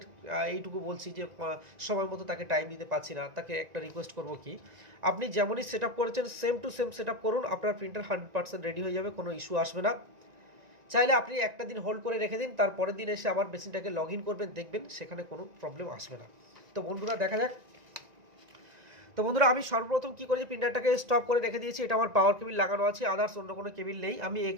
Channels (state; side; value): late; left; 1.9 ms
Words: এইটুকু বলছি যে সময় মতো তাকে টাইম দিতে পারছি না, তাকে একটা রিকোয়েস্ট করব কি, আপনি যেমনই সেট আপ করেছেন same to same set up করুন, আপনার প্রিন্টার 100% রেডি হয়ে যাবে, কোনো ইস্যু আসবে না। চাইলে আপনি একটা দিন হোল্ড করে রেখে দিন, তারপরের দিন এসে আবার মেশিনটাকে লগ ইন করবেন, দেখবেন সেখানে কোনো প্রবলেম আসবে না। তো বন্ধুরা দেখা যাক। তো বন্ধুরা, আমি সর্বপ্রথম কী করেছি, প্রিন্টারটাকে স্টপ করে রেখে দিয়েছি। এটা আমার পাওয়ার কেবিল লাগানো আছে, আদার্স অন্য কোনো কেবিল নেই। আমি